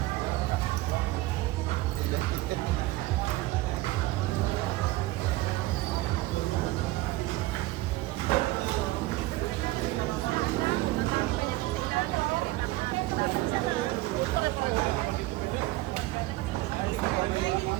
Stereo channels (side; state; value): left; quieter; 18.6 dB